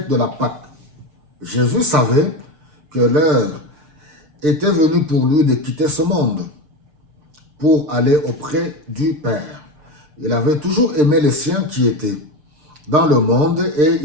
de la Pâque. Jésus savait que l'heure était venue pour lui de quitter ce monde pour aller auprès du Père. Il avait toujours aimé les siens qui étaient dans le monde et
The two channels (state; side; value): late; left; 6.6 ms